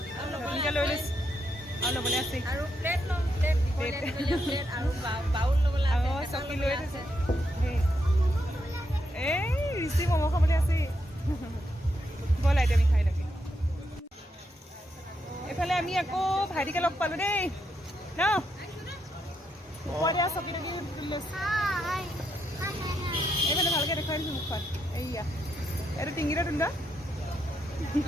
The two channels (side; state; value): both; normal; correlation 0.80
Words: নতুনকৈ লৈ লৈছোঁ। আৰু ল'বলৈ আছে আৰু প্লেট ল'ম প্লেট প্লেট আৰু বাউল ল'বলৈ আছে চকী লৈ থৈছে এই ৰিচি ম'ম' খাবলৈ আছে ব'ল আইটেম আমি খাই লাগে এইফালে আমি আকৌ ভাইটিকে লগ পালোঁ দেই ন ওপৰতে চকী টকী এইফালে ভালকৈ দেখুৱাই দিছোঁ মুখখন এইয়া এইটো টিঙিটা তুন্দ